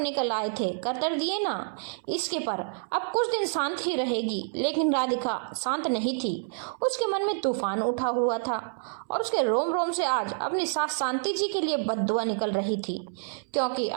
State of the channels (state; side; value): silent; left; 59 dB below the other